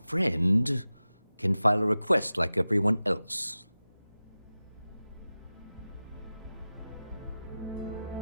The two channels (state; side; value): inverted; both; correlation -0.96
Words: friend can file a request like everyone else.